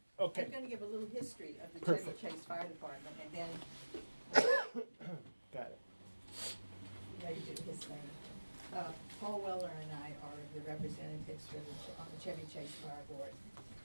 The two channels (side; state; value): both; inverted; correlation -1.00